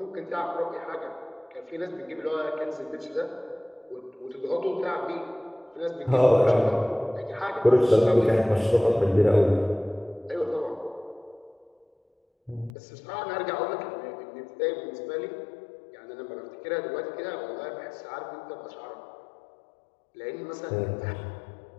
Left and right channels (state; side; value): drops out; right; at 12.7 s